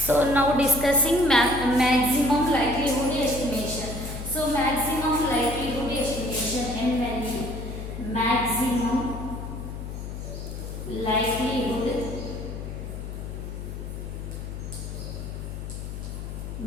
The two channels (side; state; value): left; noise; hum, 7 dB below the sound